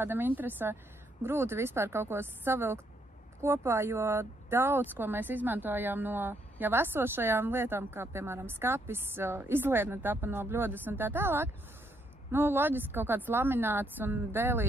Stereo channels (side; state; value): both; normal; correlation 0.73